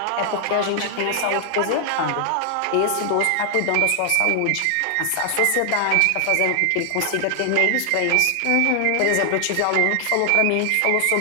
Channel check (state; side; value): different; both; correlation 0.00